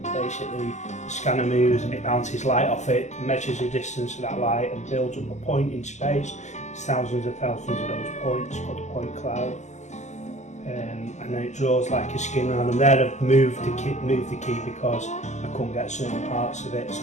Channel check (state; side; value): late; right; 0.34 ms